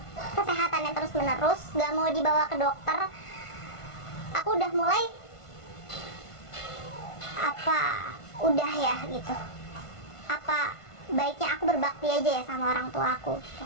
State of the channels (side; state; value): right; late; 1.5 ms